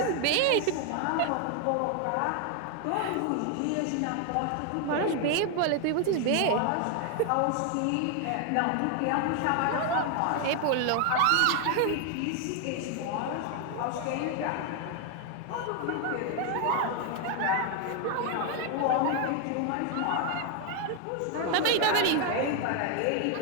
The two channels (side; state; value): both; different; correlation 0.01